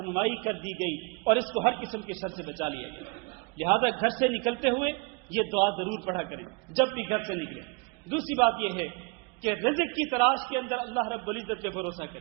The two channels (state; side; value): quieter; left; 29.8 dB